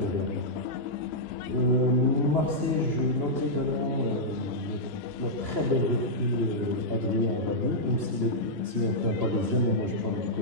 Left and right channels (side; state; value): left; late; 2.9 ms